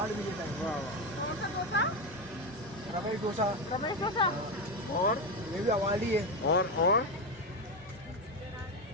भी देता है वाह वाह। रमेश डोसा, और ये भी अवार्ड ही है। और कौन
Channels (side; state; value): both; normal; correlation 0.13